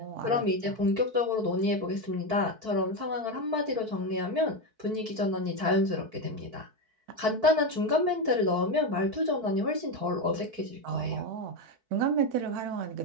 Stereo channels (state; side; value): late; left; 4.6 ms